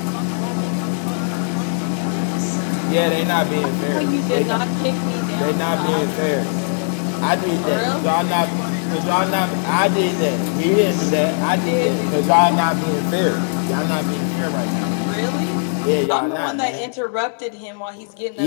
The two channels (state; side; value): silent; right; digital silence